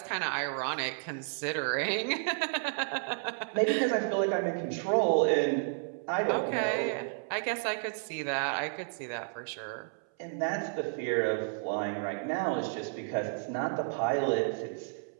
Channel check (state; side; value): silent; left; 57 dB below the other